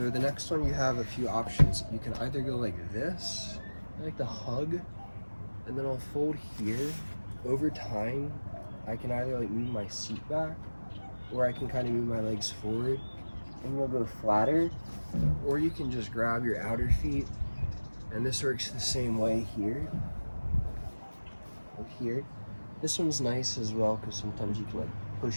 next one, you have a few options. You can either go like this, I like to hug, and then I'll fold here. Over time, I can either like move my seat back, or I can kind of move my legs forward, and we'll go flatter. Or you can just grab your outer feet, and this works the same way here. Up here. This one's nice as well, because sometimes you can like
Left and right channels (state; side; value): inverted; both; correlation -1.00